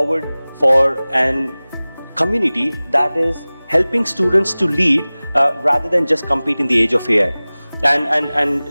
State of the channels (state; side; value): inverted; both; correlation -0.99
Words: for an community that is helping students to lead rather than just compete in the age of AI. And